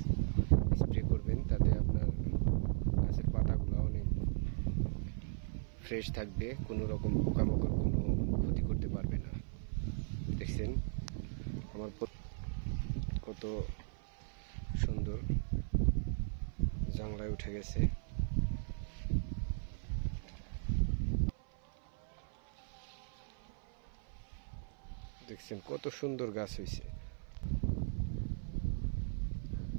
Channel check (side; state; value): left; silent; 53 dB below the other